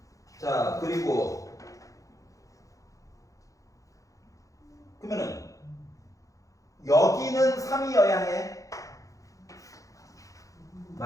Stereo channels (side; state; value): right; late; 0.16 ms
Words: 자, 그리고 그러면은 여기는 3이어야 해.